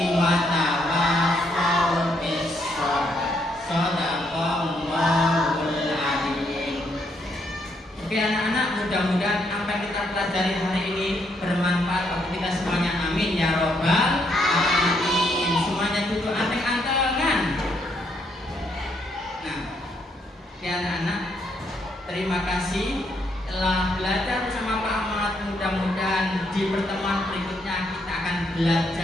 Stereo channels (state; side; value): normal; both; correlation 0.74